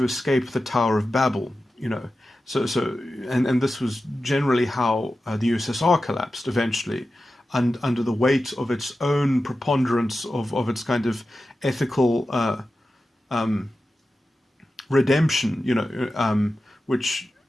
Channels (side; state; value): both; normal; correlation 0.93